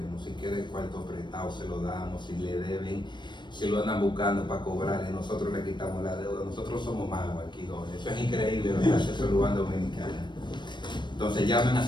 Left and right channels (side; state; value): right; late; 0.22 ms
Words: Si quieren cuarto prestado, se lo damos. Si le deben, si lo andan buscando para cobrarle, nosotros le quitamos la deuda. Nosotros somos magos aquí, Jorge. Eso es increíble lo que hace Salud Bank Dominicana. Entonces llamen a